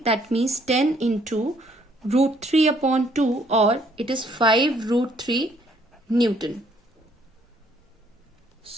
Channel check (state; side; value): normal; both; correlation 0.65